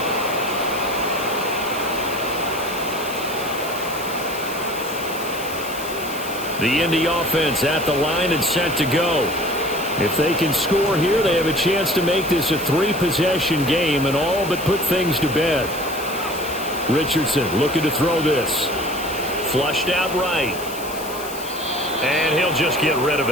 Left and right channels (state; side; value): noise; left; hiss, 12 dB below the sound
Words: The Indy offense at the line and set to go. If they can score here, they have a chance to make this a 3-possession game and all but put things to bed. Richardson looking to throw this. Flushed out right. And he'll just get rid of